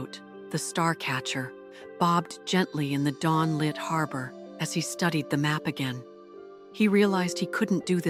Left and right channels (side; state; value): both; identical; correlation 1.00